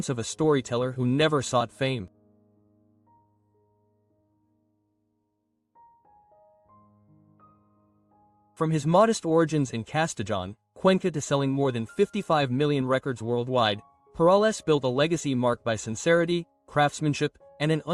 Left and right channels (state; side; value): identical; both; correlation 1.00